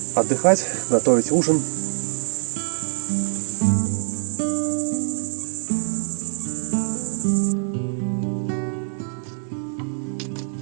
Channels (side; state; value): left; silent; digital silence